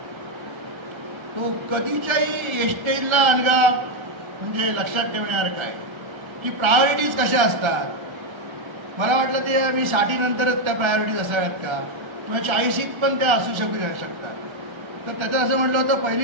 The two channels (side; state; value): left; late; 1.3 ms